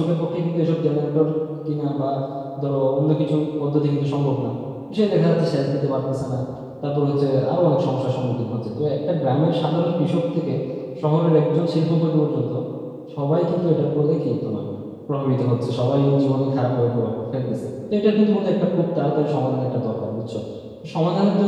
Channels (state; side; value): identical; both; correlation 1.00